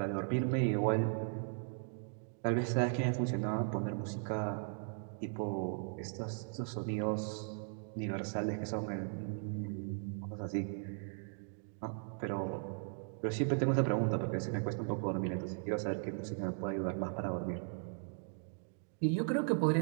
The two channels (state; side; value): silent; left; 53 dB below the other